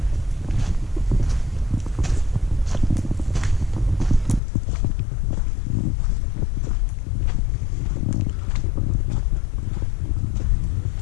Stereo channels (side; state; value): right; drops out; at 4.4 s